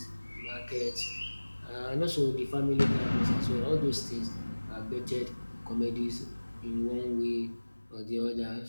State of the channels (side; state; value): both; inverted; correlation -1.00